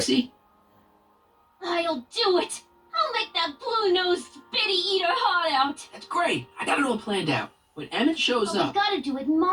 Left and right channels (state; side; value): identical; both; correlation 1.00